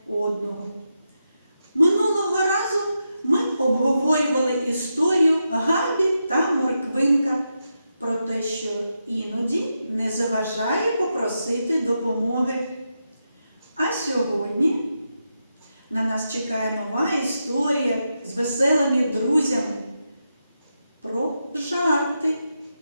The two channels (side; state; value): both; inverted; correlation -0.87